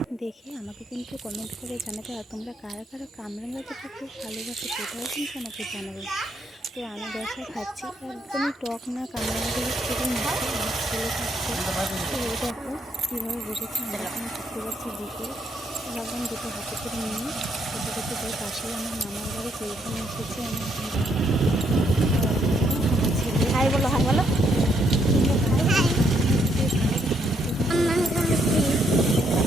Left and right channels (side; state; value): both; normal; correlation 0.73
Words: দেখে আমাকে কিন্তু কমেন্ট করে জানাবে। আর তোমরা কারা কারা কামরাঙা যেটা খুব ভালোবাসো সেটাও কিন্তু আমাকে জানাবে। তো আমি বসে খাচ্ছি, একদমই টক না, কামরাঙাগুলি খুবই মিষ্টি। আমার ছেলে খাচ্ছে। তো এই দেখো কীভাবে বসেছে, আমরা এখন ঘুরতে যাচ্ছি বিকেল। ভাবলাম দুটো হাতে করে নিয়ে খেতে খেতে যাই। পাশেই আমার মামার বাড়ি, তো এখানে এসেছি আমি এখন দেখো। আমার ছেলে হাই বলো, হাই বলো। তোমরা ভালো